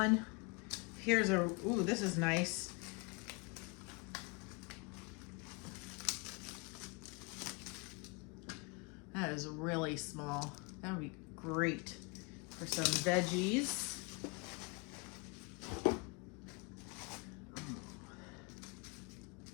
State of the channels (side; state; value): right; quieter; 30.5 dB